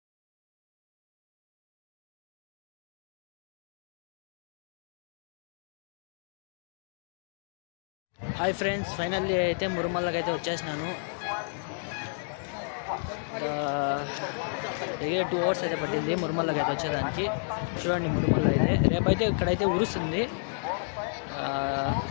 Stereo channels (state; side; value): silent; right; digital silence